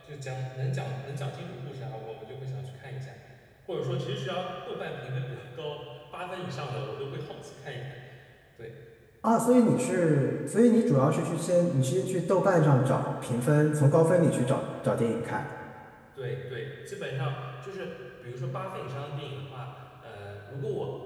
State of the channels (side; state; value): both; identical; correlation 1.00